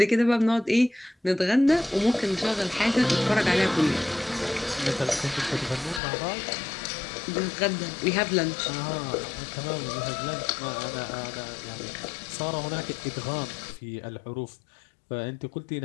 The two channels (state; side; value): drops out; right; at 6.0 s